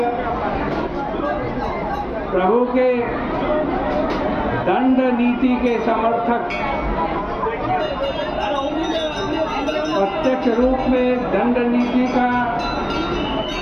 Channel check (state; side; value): identical; both; correlation 1.00